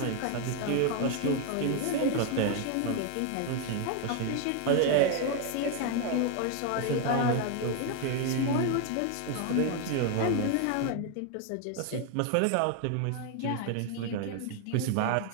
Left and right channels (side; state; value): both; different; correlation 0.01